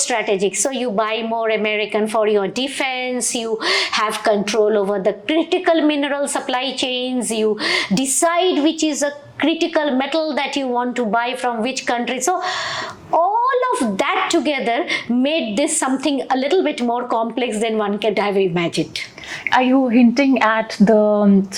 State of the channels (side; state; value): both; identical; correlation 1.00